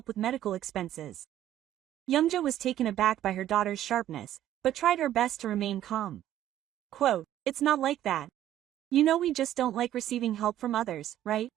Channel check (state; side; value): quieter; left; 12.3 dB